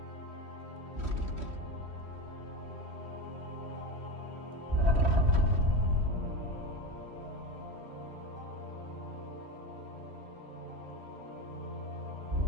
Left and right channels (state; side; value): late; left; 3.1 ms